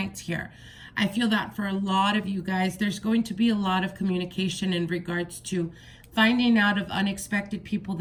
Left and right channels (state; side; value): identical; both; correlation 1.00